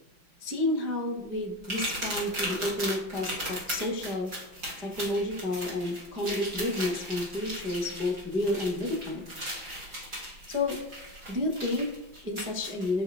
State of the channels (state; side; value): late; left; 5.5 ms